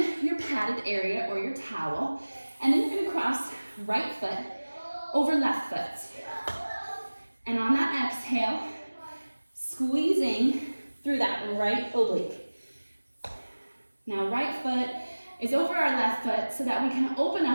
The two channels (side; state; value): both; inverted; correlation -1.00